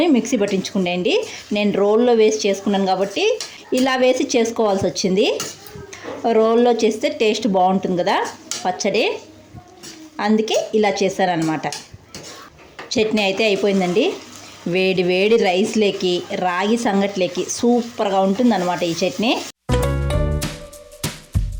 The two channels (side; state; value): both; identical; correlation 1.00